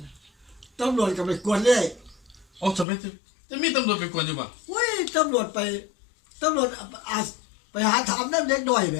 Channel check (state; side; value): drops out; right; at 2.9 s